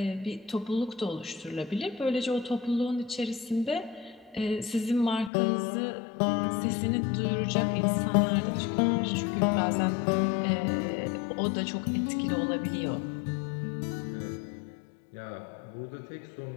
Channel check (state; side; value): drops out; right; at 5.3 s